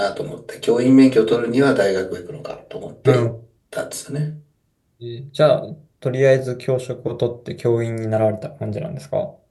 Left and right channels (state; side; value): identical; both; correlation 1.00